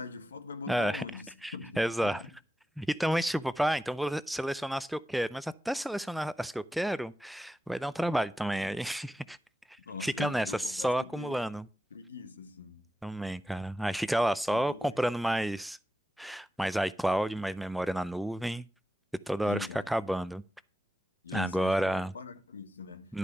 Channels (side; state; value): both; normal; correlation 0.92